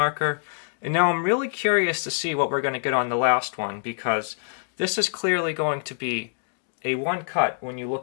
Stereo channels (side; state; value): right; silent; digital silence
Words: And now I'm really curious to see what we're going to get on the last one, because this is clearly going to be a 1 cut when you